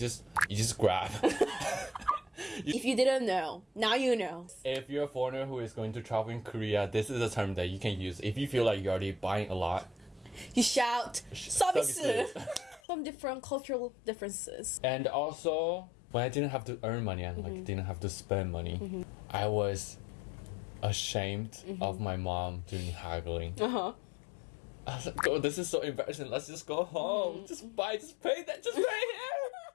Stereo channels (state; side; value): drops out; right; at 12.8 s